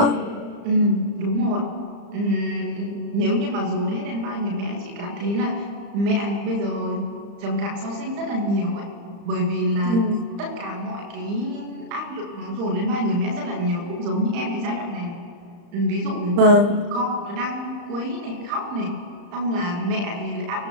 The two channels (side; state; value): left; late; 35 ms